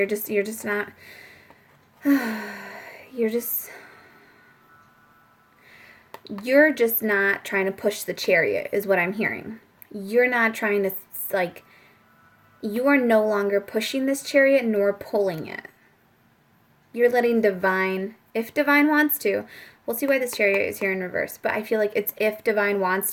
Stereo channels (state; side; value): identical; both; correlation 1.00